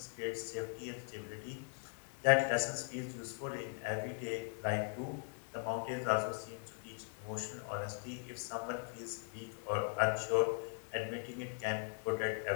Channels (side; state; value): right; silent; 51 dB below the other